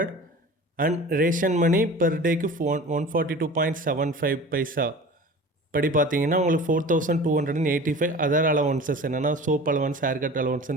அண்ட் ரேஷன் மணி பெர் டேக்கு 142.75 பைசா படி பார்த்தீங்கன்னா உங்களுக்கு 4,285. அதர் அலவன்சஸ் என்னென்னா சோப் அலவன்ஸ், ஹேர் கட்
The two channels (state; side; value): normal; both; correlation 0.39